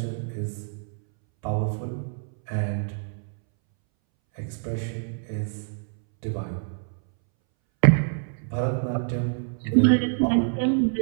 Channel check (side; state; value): left; silent; 61 dB below the other